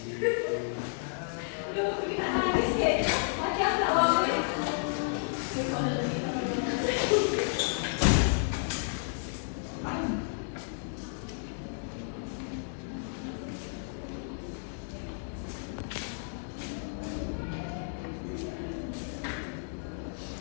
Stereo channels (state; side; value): silent; right; digital silence